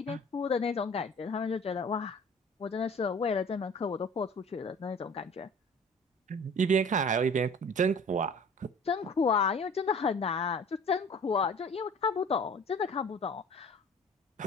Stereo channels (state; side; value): normal; both; correlation 0.45